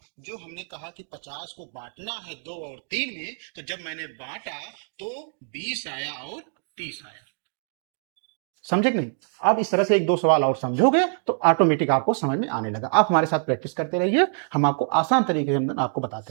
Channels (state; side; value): silent; left; 62 dB below the other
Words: जो हमने कहा कि 50 को बांटना है 2 और 3 में, तो जब मैंने बांटा तो 20 आया और 30 आया। समझे कि नहीं? अब इस तरह से 1-2 सवाल और समझोगे तो ऑटोमेटिक आपको समझ में आने लगा। आप हमारे साथ प्रैक्टिस करते रहिए, हम आपको आसान तरीके से आपको